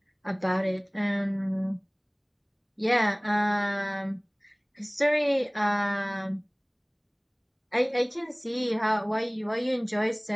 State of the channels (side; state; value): both; identical; correlation 1.00